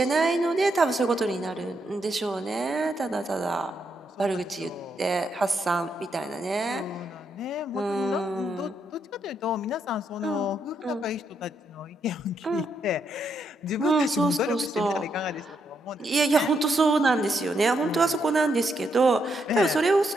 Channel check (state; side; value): normal; both; correlation 0.78